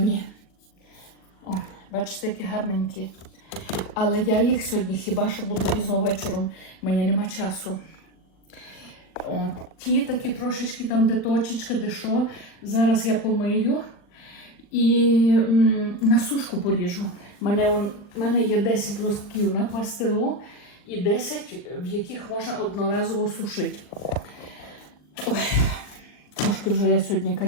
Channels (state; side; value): late; right; 40 ms